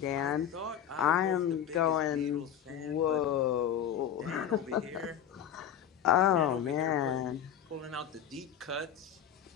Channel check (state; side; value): quieter; right; 9.4 dB